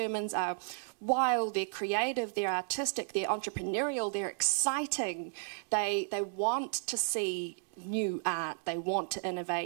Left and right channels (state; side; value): silent; left; digital silence